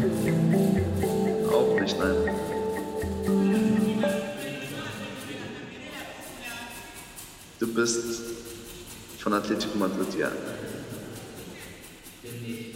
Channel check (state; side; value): identical; both; correlation 1.00